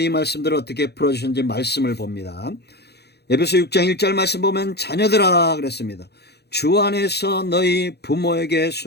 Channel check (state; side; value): late; right; 0.48 ms